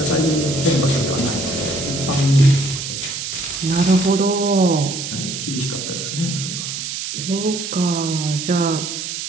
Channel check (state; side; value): noise; right; hiss, 5 dB below the sound